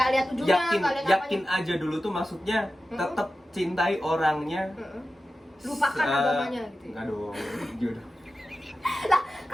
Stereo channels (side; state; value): both; normal; correlation 0.94